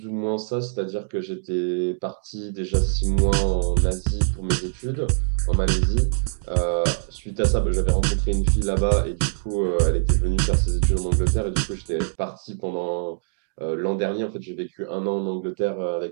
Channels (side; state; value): left; silent; digital silence